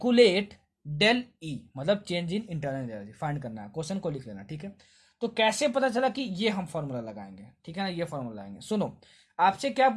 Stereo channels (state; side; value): identical; both; correlation 1.00